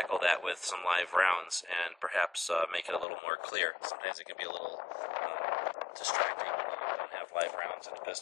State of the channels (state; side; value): drops out; right; at 3.1 s